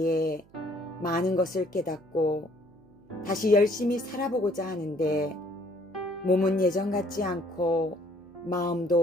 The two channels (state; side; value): noise; right; hum, 29 dB below the sound